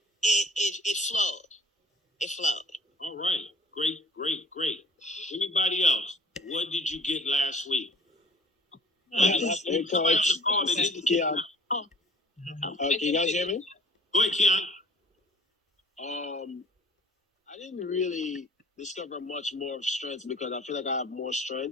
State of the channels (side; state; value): both; normal; correlation 0.49